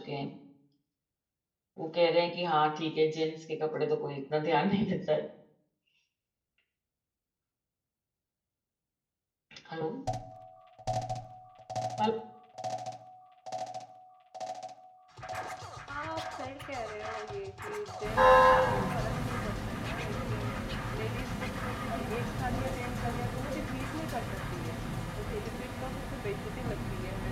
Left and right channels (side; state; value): both; identical; correlation 1.00